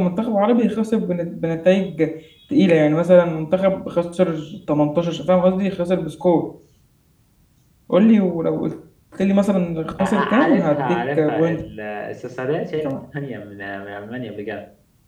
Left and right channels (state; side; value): identical; both; correlation 1.00